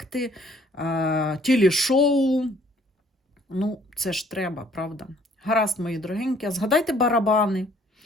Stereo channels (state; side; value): normal; both; correlation 0.60